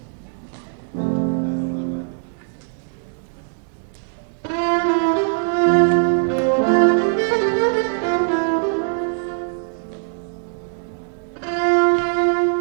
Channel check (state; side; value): silent; left; digital silence